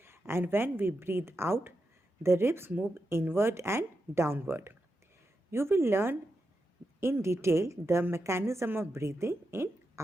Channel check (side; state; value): both; normal; correlation 0.87